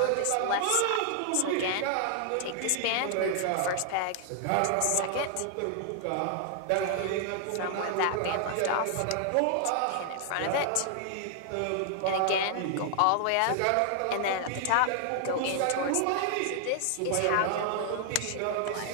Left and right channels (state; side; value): different; both; correlation 0.00